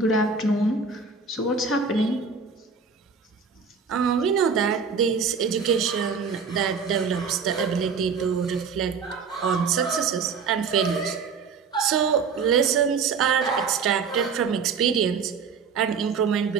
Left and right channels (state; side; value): quieter; left; 5.5 dB